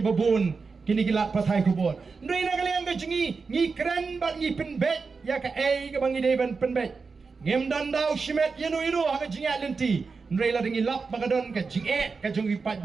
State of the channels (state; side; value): quieter; left; 4.7 dB